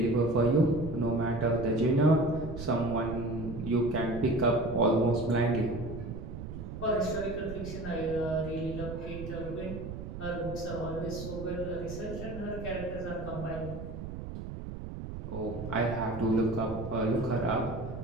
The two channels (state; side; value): noise; right; rumble, 8 dB below the sound